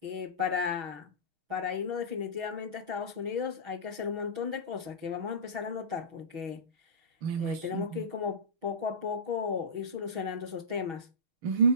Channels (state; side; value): late; left; 6.2 ms